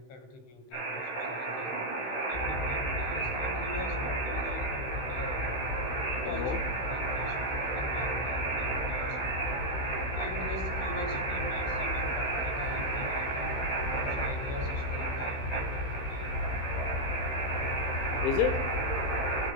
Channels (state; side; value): late; right; 15 ms